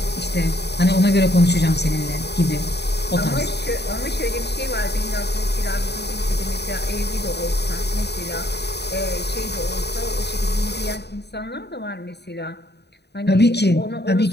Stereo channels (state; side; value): late; right; 0.49 ms